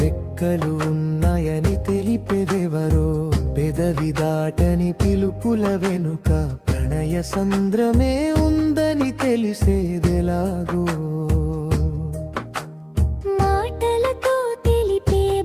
రెక్కలు ఉన్నాయని తెలిపేదెవరో పెదవి దాటని పిలుపుల వెనుక ప్రణయ సంద్రమే ఉందని తెలిసేదెలాగో. మాటలతో తెలిపే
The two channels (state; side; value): identical; both; correlation 1.00